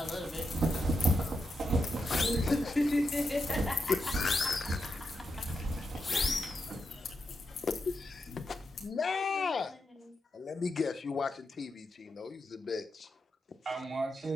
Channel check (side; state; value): both; normal; correlation 0.85